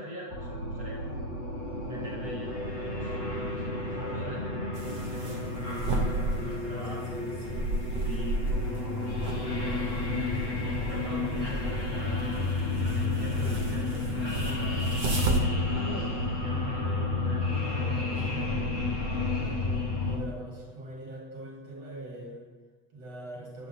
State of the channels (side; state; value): left; late; 8.0 ms